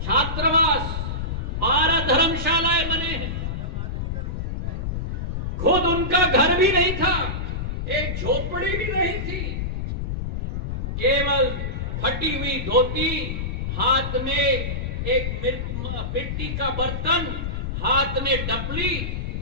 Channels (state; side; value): noise; left; rumble, 3 dB below the sound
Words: छात्रावास, 12 धर्मशालाएं बने हैं। खुद उनका घर भी नहीं था, एक झोपड़ी भी नहीं थी, केवल फटी हुई धोती, हाथ में एक मिट्टी का बर्तन, हाथ में डपली,